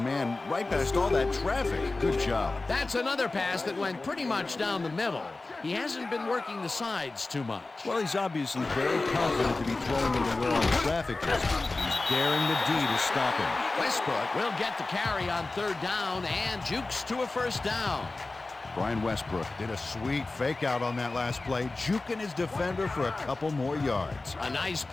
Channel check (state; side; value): quieter; right; 3.3 dB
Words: right past all that traffic. Good job. That's another pass that went pretty much down the middle. He hasn't been working the sides too much. Well, he's obviously very confident to be throwing into where all the traffic is. He's daring the D to stop him. Westbrook will get the carry on third down and jukes to a first down. Brian Westbrook did a sweet fake out on that last play, juking his defender for a couple more yards. A nice